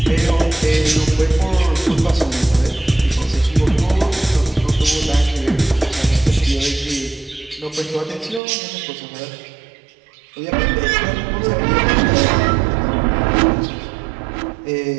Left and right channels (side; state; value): left; drops out; at 8.4 s